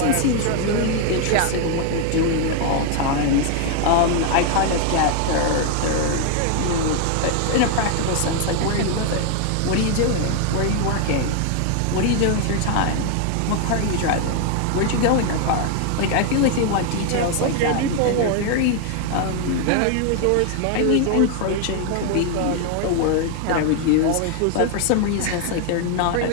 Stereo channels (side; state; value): both; different; correlation 0.00